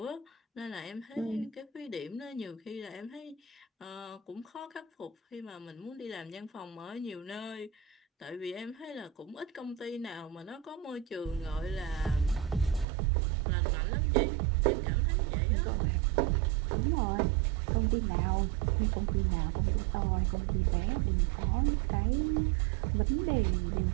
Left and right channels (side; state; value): left; drops out; at 12.9 s